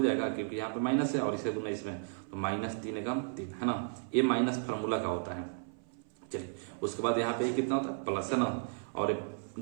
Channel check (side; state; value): left; silent; 55 dB below the other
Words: क्योंकि यहाँ पे माइनस है, और इसका गुना इसमें तो -3 एकम 3 है ना, ये माइनस फार्मूला का होता है। चलिए उसके बाद यहाँ पे कितना होता है, प्लस है ना, और